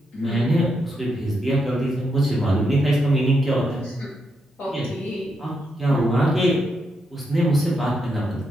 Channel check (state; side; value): normal; both; correlation 0.82